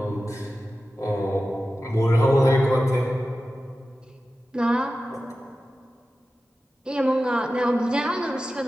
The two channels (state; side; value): normal; both; correlation 0.94